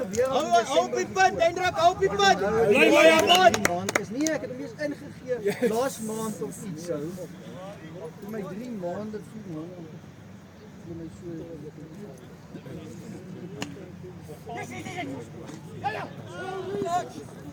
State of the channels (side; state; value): both; identical; correlation 1.00